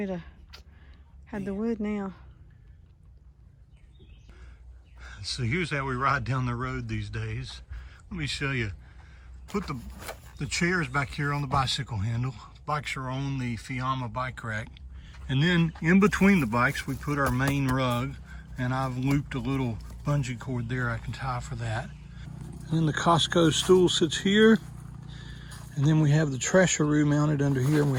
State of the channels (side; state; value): both; identical; correlation 1.00